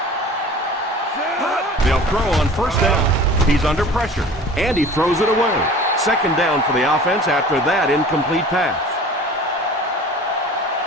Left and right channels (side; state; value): both; normal; correlation 0.43